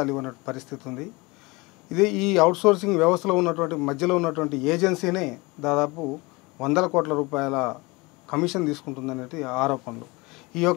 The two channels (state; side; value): quieter; right; 24.6 dB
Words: ఇవ్వని పరిస్థితి ఉంది. ఈ అవుట్సోర్సింగ్ వ్యవస్థలో ఉన్నటువంటి మధ్యలో ఉన్నటువంటి ఏజెన్సీనే దాదాపు 100 కోట్ల రూపాయల కమిషన్ తీసుకుంటుందనేది ఆరోపణలు. ఈ